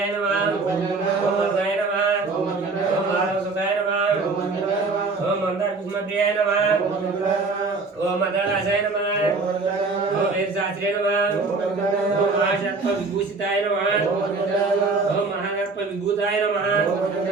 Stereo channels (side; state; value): left; quieter; 3.9 dB